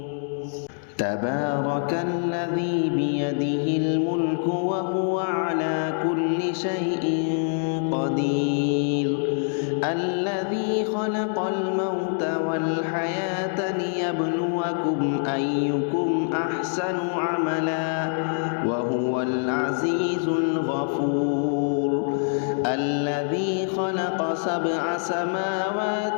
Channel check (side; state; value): right; silent; digital silence